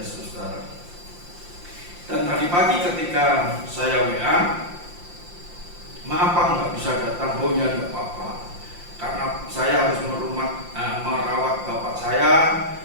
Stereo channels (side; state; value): left; late; 5.7 ms